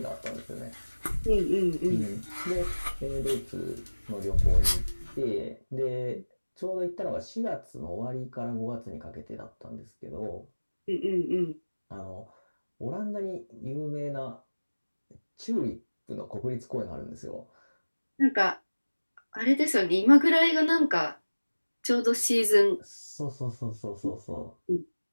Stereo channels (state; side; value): inverted; both; correlation -1.00